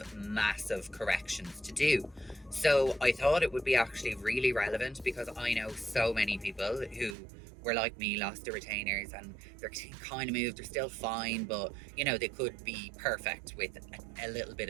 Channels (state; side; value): drops out; left; at 7.2 s